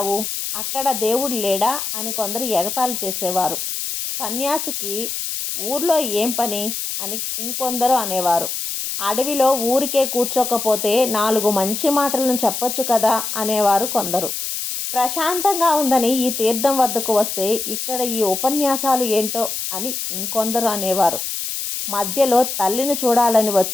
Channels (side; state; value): left; noise; hiss, 4 dB below the sound